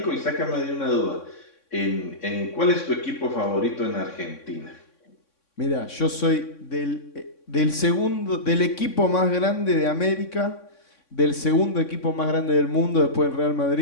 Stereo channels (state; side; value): late; right; 3.6 ms